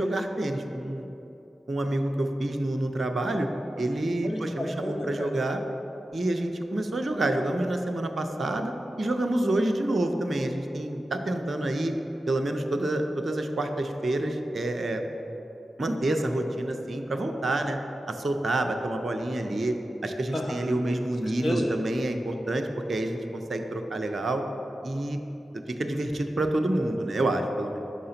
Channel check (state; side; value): normal; both; correlation 0.92